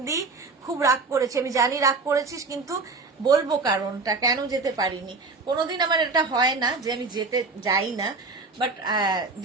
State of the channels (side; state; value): left; quieter; 4.0 dB